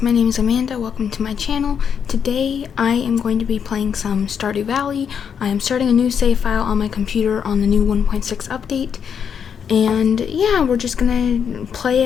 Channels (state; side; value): quieter; right; 7.4 dB